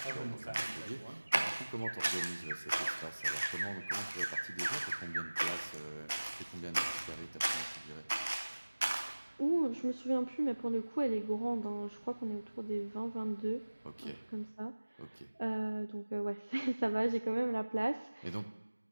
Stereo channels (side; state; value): both; inverted; correlation -1.00